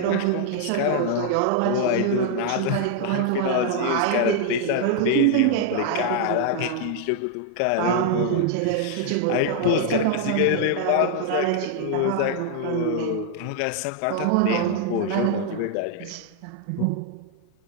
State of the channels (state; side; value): different; both; correlation 0.00